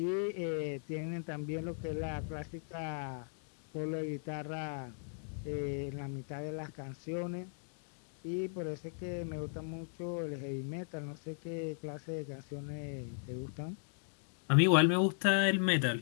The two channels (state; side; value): silent; right; digital silence